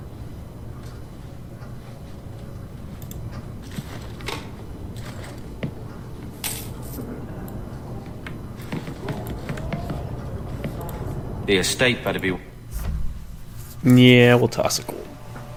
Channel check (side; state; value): both; identical; correlation 1.00